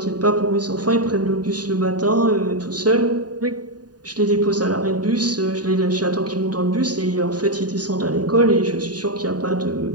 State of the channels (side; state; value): left; late; 0.69 ms